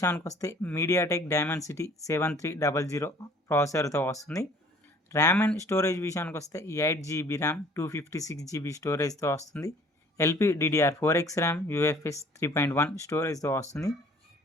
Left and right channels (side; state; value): both; normal; correlation 0.54